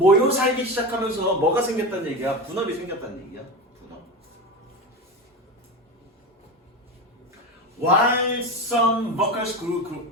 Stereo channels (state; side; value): normal; both; correlation 0.23